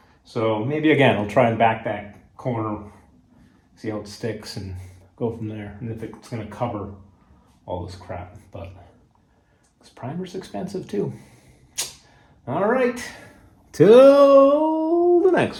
So maybe again, I'll try and back that corner, see how it sticks and go from there. And if it's gonna cover all this crap, but this primer's expensive too. All right, till the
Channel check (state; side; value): identical; both; correlation 1.00